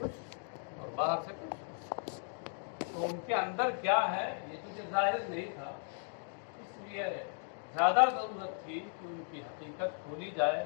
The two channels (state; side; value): silent; right; 53 dB below the other